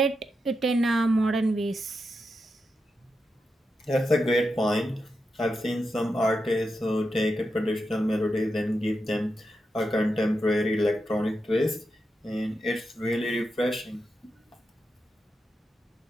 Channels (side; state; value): both; normal; correlation 0.87